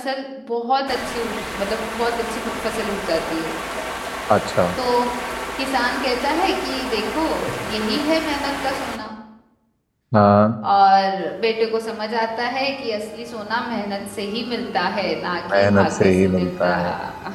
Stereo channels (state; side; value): identical; both; correlation 1.00